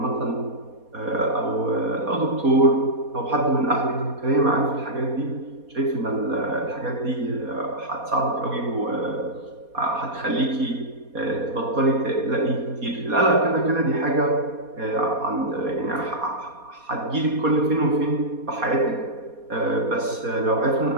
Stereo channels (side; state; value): left; late; 4.2 ms